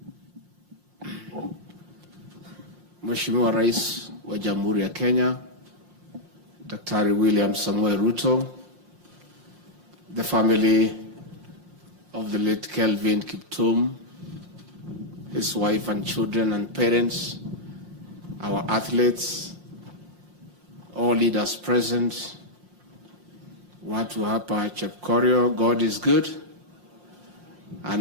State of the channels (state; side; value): late; left; 5.6 ms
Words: Mheshimiwa Rais wa Jamhuri ya Kenya, Daktari William Samoei Ruto, the family of the late Kelvin Kiptum, his wife and children and parents, our athletes, all leaders present, watu hapa Chepkorio, God is good,